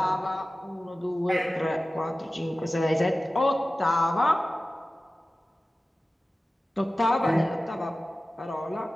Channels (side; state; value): both; normal; correlation 0.96